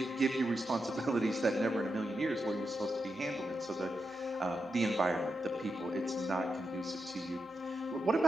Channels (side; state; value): left; noise; hum, 30 dB below the sound